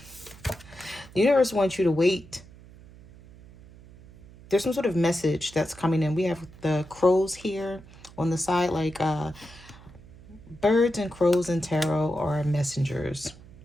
The universe wants you to wait. There's some sort of message that's coming in. We have the crows here on the side, like birds and crows and tarot are messengers.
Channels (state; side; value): noise; right; hum, 21 dB below the sound